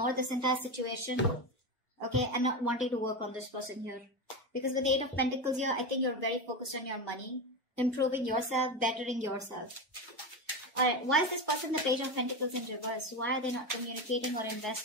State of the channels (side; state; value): both; normal; correlation 0.17